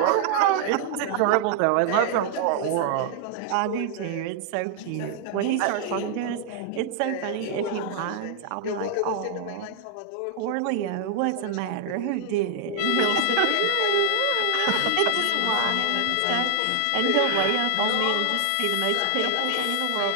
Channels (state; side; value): different; both; correlation 0.00